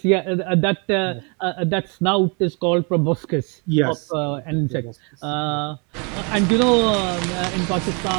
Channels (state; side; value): quieter; left; 33.5 dB